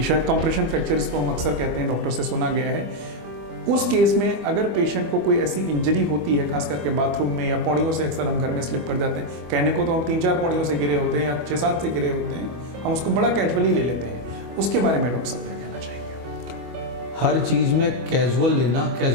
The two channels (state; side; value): late; left; 25 ms